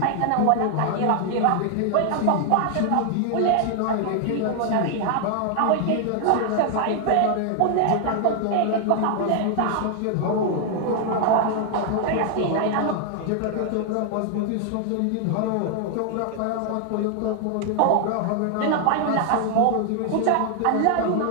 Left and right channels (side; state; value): both; different; correlation 0.00